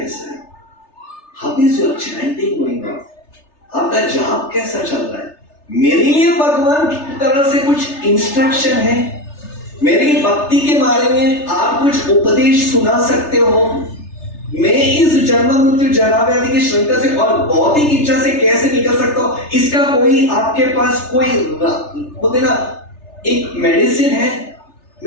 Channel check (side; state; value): right; late; 3.3 ms